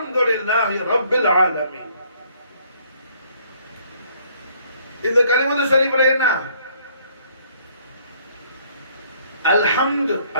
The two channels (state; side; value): inverted; both; correlation -0.63